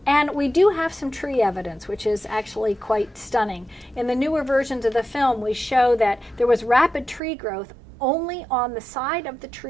And we do have some tree evidence, which is actually quite stunning. In the newer versions of the film, we show that there was rapid tree growth only on the side of the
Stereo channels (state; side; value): drops out; left; at 7.2 s